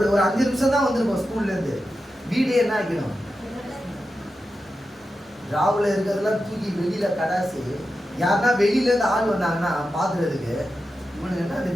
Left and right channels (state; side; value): normal; both; correlation 0.90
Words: 5 நிமிஷம் தான் வந்திருக்கோம் ஸ்கூல்ல இருந்து. வீடே என்ன ஆகிடும், ராவுல இருக்கிறதெல்லாம் தூக்கி வெளியில கடாசி. யாருன்னா வெளியில இருந்து ஆள் வந்தாங்கன்னா பாக்குறதுக்கு, இவனுக்கு என்ன அந்த